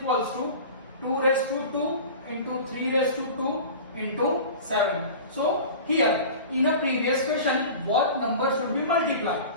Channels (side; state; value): both; inverted; correlation -0.36